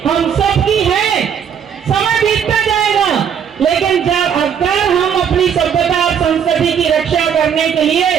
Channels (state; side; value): quieter; left; 8.0 dB